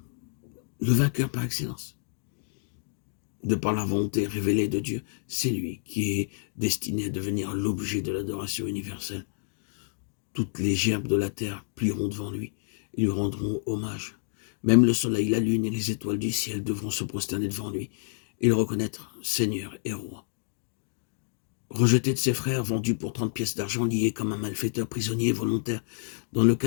le vainqueur par excellence. De par la volonté révélée de Dieu, c'est lui qui est destiné à devenir l'objet de l'adoration universelle. Toutes les gerbes de la terre plieront devant lui et lui rendront hommage. Même le soleil, la lune et les étoiles du ciel devront se prosterner devant lui et le reconnaître Seigneur et Roi. Rejeté de ses frères, vendu pour 30 pièces d'argent, lié comme un malfaiteur prisonnier volontaire, dans le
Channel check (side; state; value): right; silent; digital silence